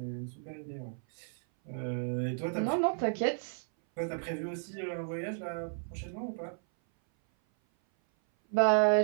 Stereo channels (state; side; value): silent; left; 56 dB below the other